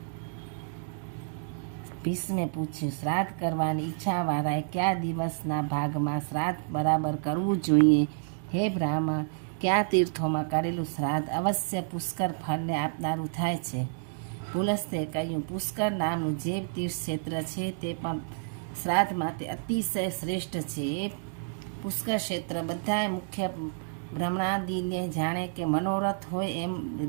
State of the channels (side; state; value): left; silent; digital silence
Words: ભીષ્મે પૂછ્યું, શ્રાદ્ધ કરવાની ઈચ્છાવાળાએ કયા દિવસના ભાગમાં શ્રાદ્ધ બરાબર કરવું જોઈએ? હે બ્રાહ્મણ, કયા તીર્થોમાં કરેલું શ્રાદ્ધ અવશ્ય પુષ્કર ફળને આપનારું થાય છે? પુલસ્ત્યે કહ્યું, પુષ્કર નામનું જે તીર્થ ક્ષેત્ર છે તે પણ શ્રાદ્ધ માટે અતિશય શ્રેષ્ઠ છે। એ પુષ્કર ક્ષેત્ર બધાય મુખ્ય બ્રહ્માદિને જાણે કે મનોરથ હોય એમ